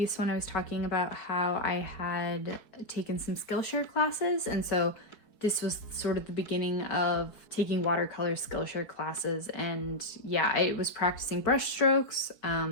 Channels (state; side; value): late; right; 4.8 ms